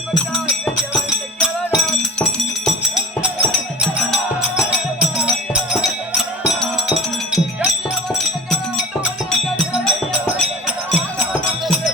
பட்டா வேண்டிய வரத்தை கேளடா.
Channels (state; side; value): normal; both; correlation 0.38